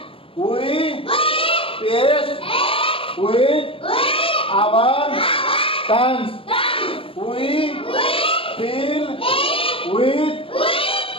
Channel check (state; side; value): late; right; 0.26 ms